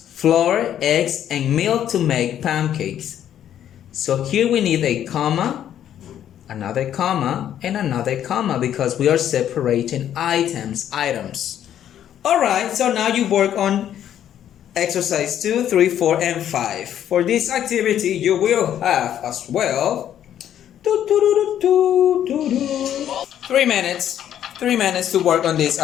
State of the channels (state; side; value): quieter; right; 10.5 dB